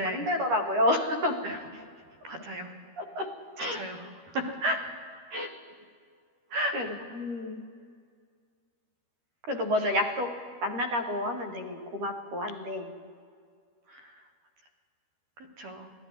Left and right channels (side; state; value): left; late; 13 ms